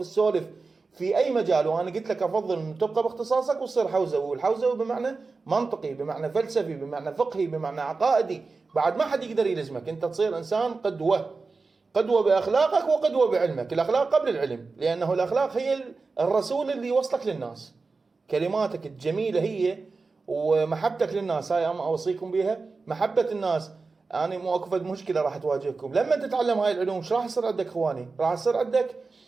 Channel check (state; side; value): quieter; left; 4.1 dB